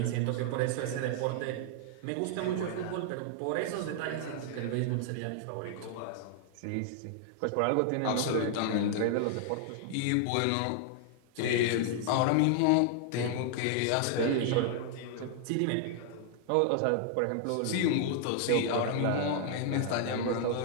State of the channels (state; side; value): different; both; correlation 0.00